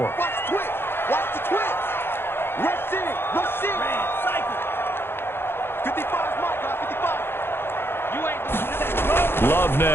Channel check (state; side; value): late; right; 0.11 ms